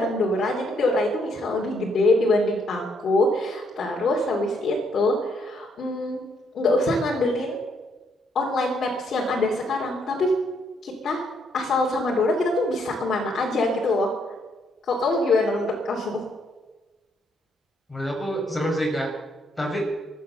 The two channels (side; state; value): both; normal; correlation 0.72